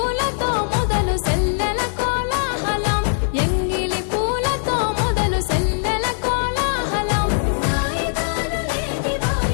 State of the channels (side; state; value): right; silent; digital silence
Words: మొదలు సెల్లెల కోలాహలం ఎంగిలి పూలతో మొదలు సెల్లెల కోలాహలం వాయిదాలు లేని